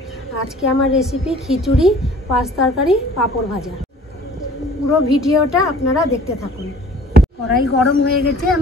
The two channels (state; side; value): normal; both; correlation 0.50